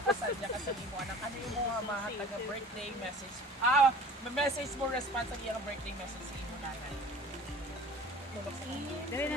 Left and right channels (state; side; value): normal; both; correlation 0.44